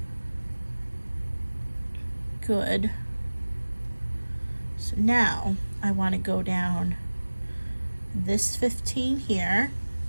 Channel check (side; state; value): both; inverted; correlation -1.00